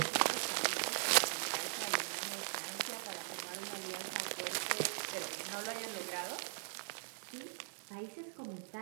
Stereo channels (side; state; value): left; silent; 51 dB below the other